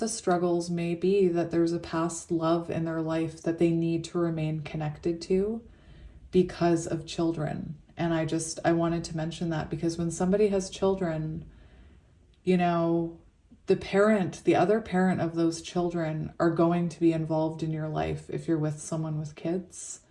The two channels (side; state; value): both; identical; correlation 1.00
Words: struggles may be that there's a past love in their life that they need to remain connected to because of children. And I wanted to mention that because when somebody has children, the other parent of those children are going to be involved in your life if you're with someone with kids.